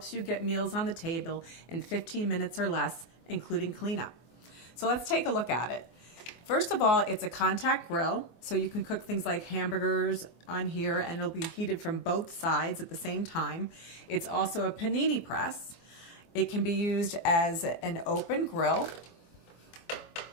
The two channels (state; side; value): late; right; 24 ms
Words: you get meals on the table in 15 minutes or less, including cleanup. So let's take a look at it. First of all, it's a contact grill, so you can cook things like hamburgers on here and it'll be heated from both sides at the same time. It's also a panini press. It can be used as an open grill